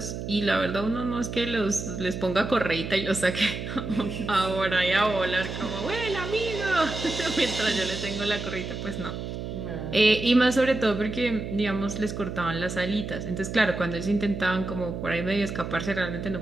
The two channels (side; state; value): right; noise; hum, 6 dB below the sound